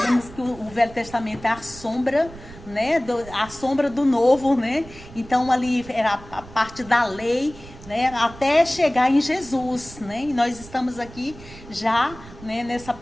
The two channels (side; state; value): right; noise; rumble, 18 dB below the sound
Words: que o Velho Testamento é a sombra, né, a sombra do Novo, né? Então ali era a parte da lei, né, até chegar em Jesus, né? E nós estamos aqui já, né, nessa